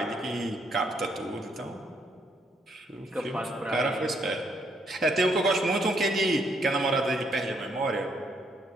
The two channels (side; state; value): both; normal; correlation 0.72